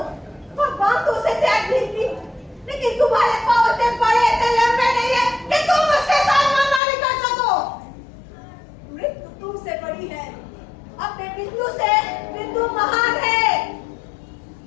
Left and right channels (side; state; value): right; drops out; at 6.8 s